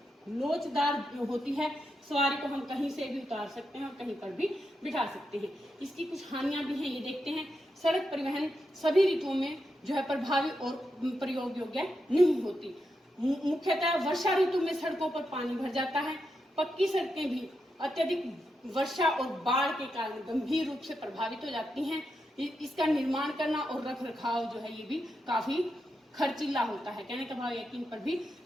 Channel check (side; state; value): both; normal; correlation 0.85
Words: लोचदार होती है। सवारी को हम कहीं से भी उतार सकते हैं और कहीं पर भी बिठा सकते हैं। इसकी कुछ हानियां भी हैं, ये देखते हैं। सड़क परिवहन सभी ऋतुओं में जो है प्रभावी और प्रयोग योग्य नहीं होती। मुख्यतः वर्षा ऋतु में सड़कों पर पानी भर जाता है। पक्की सड़कें भी अत्यधिक वर्षा और बाढ़ के कारण गंभीर रूप से प्रभावित हो जाती हैं। इसका निर्माण करना और रख रखाव जो है ये भी काफी खर्चीला होता है। कहने का भाव यकीन पर भी